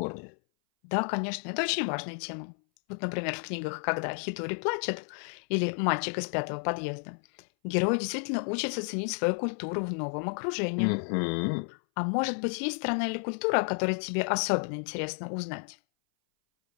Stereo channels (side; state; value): right; silent; 57 dB below the other